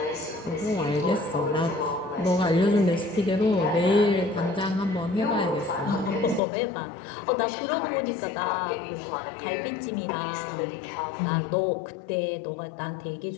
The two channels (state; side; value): drops out; right; at 6.4 s